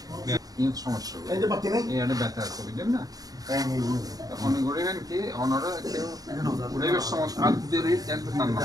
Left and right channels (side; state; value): left; late; 0.18 ms